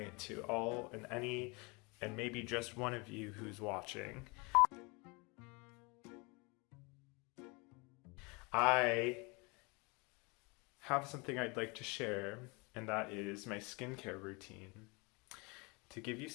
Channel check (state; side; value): quieter; right; 28.8 dB